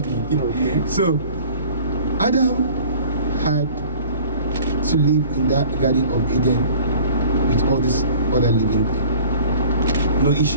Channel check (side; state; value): both; inverted; correlation -0.47